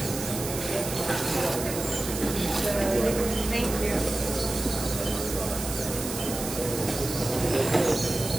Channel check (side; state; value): right; noise; hiss, 7 dB below the sound